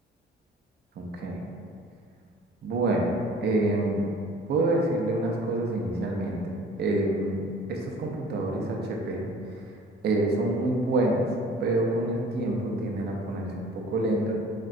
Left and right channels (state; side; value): normal; both; correlation 0.49